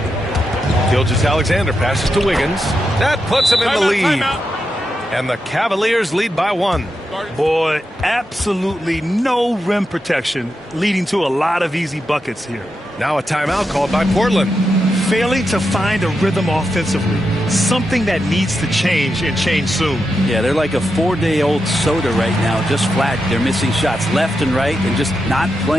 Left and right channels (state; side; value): normal; both; correlation 0.87